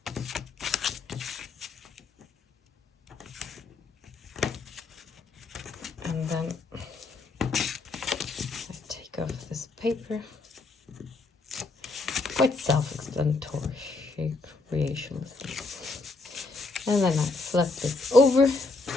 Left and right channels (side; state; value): right; quieter; 3.6 dB